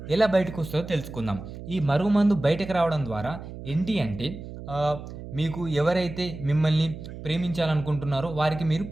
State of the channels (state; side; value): noise; right; hum, 12 dB below the sound